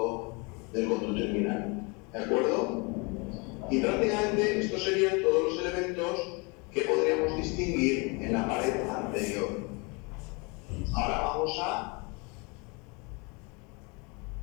del conducto inguinal. ¿De acuerdo? Y prácticamente estos serían todos los elementos que podríamos distinguir en la pared anterior. Ahora vamos a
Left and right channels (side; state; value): right; quieter; 29.9 dB